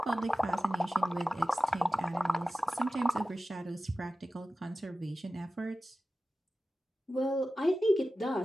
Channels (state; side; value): normal; both; correlation 0.95